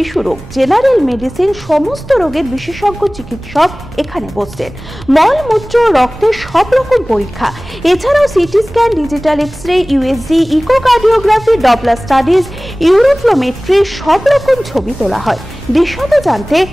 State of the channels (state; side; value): noise; right; rumble, 18 dB below the sound